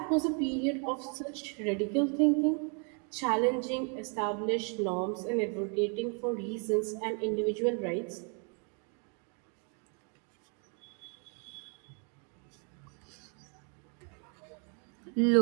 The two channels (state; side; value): quieter; left; 38.8 dB